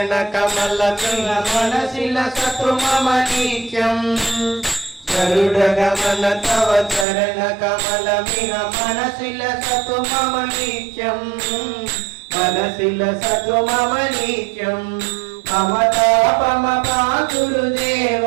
कमल मनसिल सतु मम नित्यं गरुड गमन तव चरण कमल मनसिल सतु मम नित्यं मनसिल सतु मम नित्यं मम पापम गुरुदेव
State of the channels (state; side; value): drops out; left; at 7.1 s